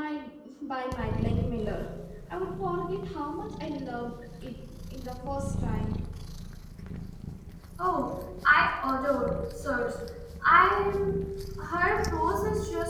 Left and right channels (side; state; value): both; identical; correlation 1.00